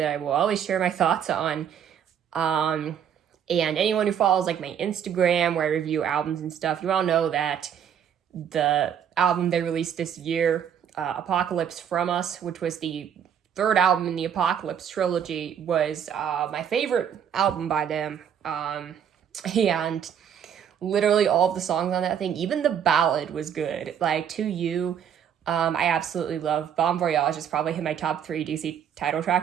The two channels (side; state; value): left; quieter; 8.6 dB